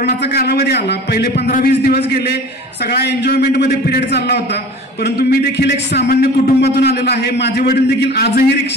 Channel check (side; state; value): both; normal; correlation 0.41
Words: कालावधी आला, पहिले 15-20 दिवस गेले, सगळा एन्जॉयमेंटमध्ये पिरियड चालला होता. परंतु मी देखील एक सामान्य कुटुंबातून आलेला आहे. माझे वडील देखील आजही